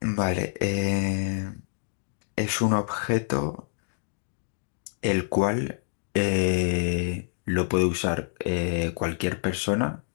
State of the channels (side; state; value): right; silent; digital silence